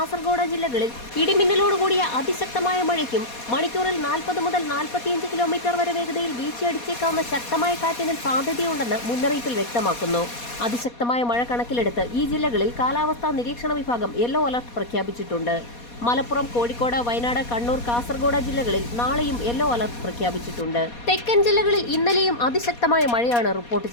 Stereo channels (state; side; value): late; right; 4.2 ms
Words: ജില്ലകളിൽ ഇടിമിന്നലോടുകൂടിയ അതിശക്തമായ മഴയ്ക്കും മണിക്കൂറിൽ 40 മുതൽ 45 കിലോമീറ്റർ വരെ വേഗതയിൽ വീശിയടിച്ചേക്കാവുന്ന ശക്തമായ കാറ്റിനും സാധ്യതയുണ്ടെന്ന് മുന്നറിയിപ്പിൽ വ്യക്തമാക്കുന്നു. അതിശക്തമായ മഴ കണക്കിലെടുത്ത് ഈ ജില്ലകളിൽ കാലാവസ്ഥാ നിരീക്ഷണ വിഭാഗം യെല്ലോ അലർട്ട് പ്രഖ്യാപിച്ചിട്ടുണ്ട്. മലപ്പുറം, കോഴിക്കോട്, വയനാട്, കണ്ണൂർ, കാസർഗോഡ് ജില്ലകളിൽ നാളെയും യെല്ലോ അലർട്ട് പ്രഖ്യാപിച്ചിട്ടുണ്ട്. തെക്കൻ ജില്ലകളിൽ ഇന്നലെയും അതിശക്തമായ മഴയാണ് റിപ്പോർട്ട്